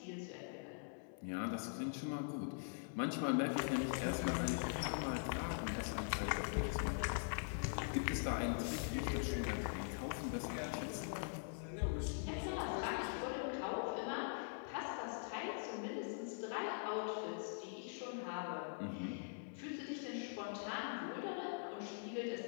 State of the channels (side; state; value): right; silent; digital silence